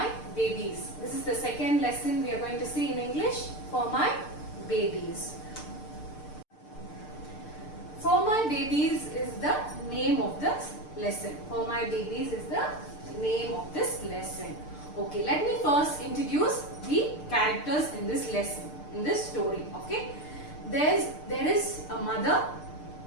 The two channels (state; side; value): late; right; 6.7 ms